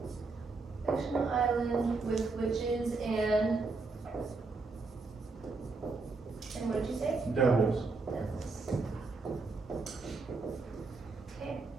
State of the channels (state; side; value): quieter; left; 4.0 dB